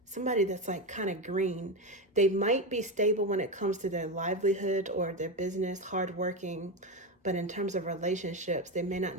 Somebody that's like kind of green. They might be stable when it comes to their livelihood or their business, hardworking, but in terms of relationships, they may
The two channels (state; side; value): normal; both; correlation 0.14